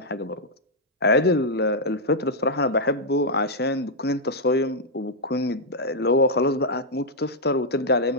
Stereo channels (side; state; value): both; normal; correlation -0.05